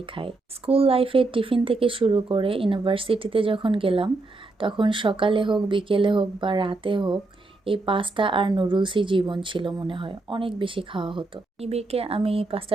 খাই। স্কুল লাইফে টিফিন থেকে শুরু করে ইউনিভার্সিটিতে যখন গেলাম তখন সকালে হোক বিকেলে হোক বা রাতে হোক এই পাস্তা আর নুডলসই জীবন ছিল মনে হয়, অনেক বেশি খাওয়া হতো। নিবিড়কে আমি পাস্তা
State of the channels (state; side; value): quieter; left; 3.3 dB